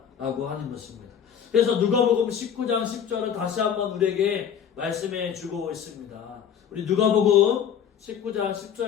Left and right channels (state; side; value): quieter; right; 8.3 dB